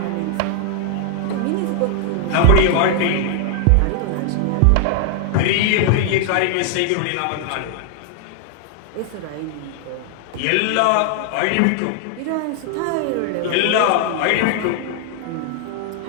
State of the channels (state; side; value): different; both; correlation 0.00